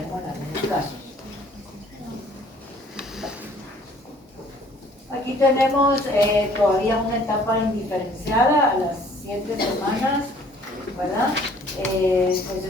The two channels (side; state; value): both; normal; correlation 0.56